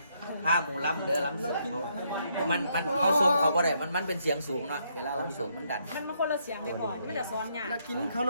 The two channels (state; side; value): inverted; both; correlation -0.73